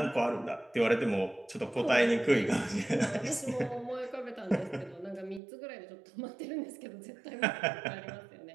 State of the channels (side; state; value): left; drops out; at 5.4 s